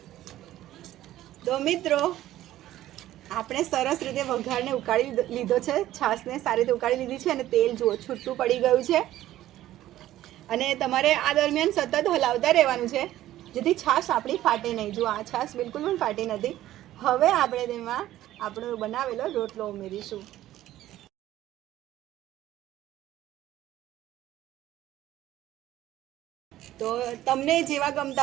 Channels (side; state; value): left; quieter; 14.0 dB